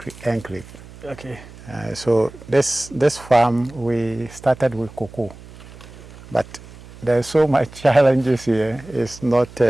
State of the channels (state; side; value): noise; right; hum, 19 dB below the sound